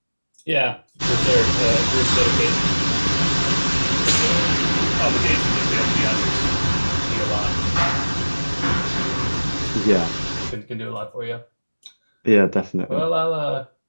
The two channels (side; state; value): both; inverted; correlation -1.00